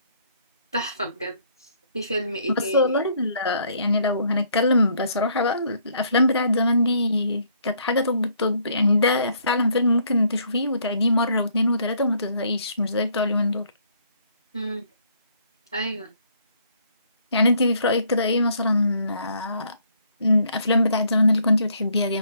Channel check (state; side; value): inverted; both; correlation -0.66